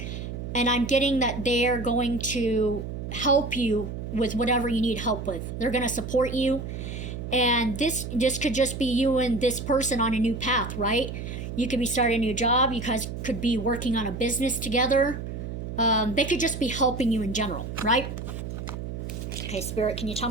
And I'm getting that they're going to help you with whatever you need help with. They're going to support you. And this could just be you and this person on a new path, right? You could be starting a new job. You guys could be working on a business together. They could just be helping you in general, right? Okay, Spirit, can you tell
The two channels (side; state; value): right; noise; hum, 7 dB below the sound